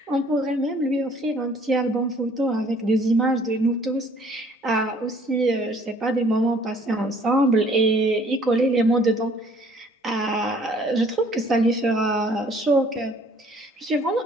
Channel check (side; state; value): both; normal; correlation 0.57